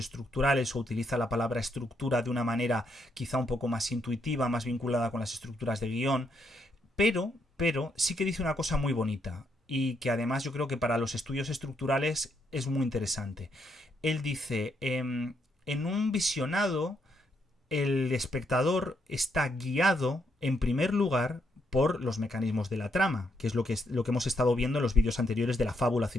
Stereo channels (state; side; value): normal; both; correlation 0.77